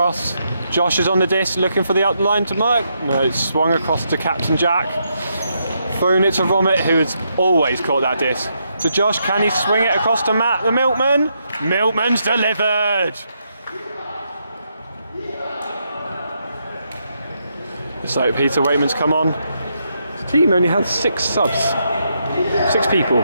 Josh is on the disc, looking for the up line to mark. No, it's swung across to Captain Jack. Thrown it to Womit, who has always caught that disc. To Josh, can he swing it across to Matt, the milkman? Milkman's delivered! So Peter Waitman's come on. The team only had 6 subs. 6 people,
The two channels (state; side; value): inverted; both; correlation -0.80